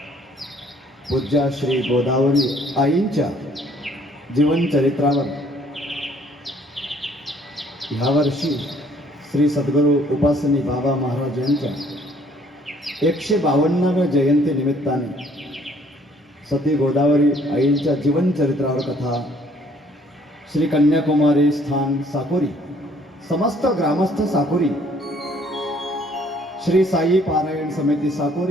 पूज्या श्री गोदावरी आईंच्या जीवनचरित्रावर ह्यावर्षी श्री सद्गुरू उपासनी बाबा महाराज यांच्या 152व्या जयंती निमित्ताने सती गोदावरी आईंच्या जीवनचरित्रावर कथा श्री कन्याकुमारी स्थान साकोरी समस्त ग्रामस्थ साकोरी श्री साई पारायण समिती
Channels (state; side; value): normal; both; correlation 0.60